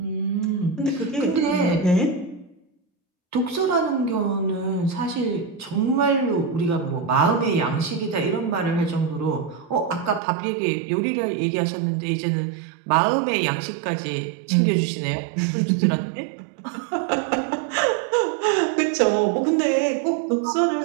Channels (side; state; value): left; drops out; at 10.2 s